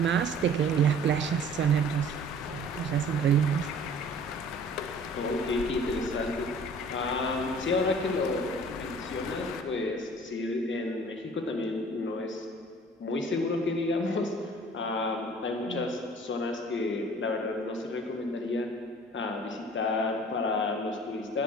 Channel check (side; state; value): both; normal; correlation 0.49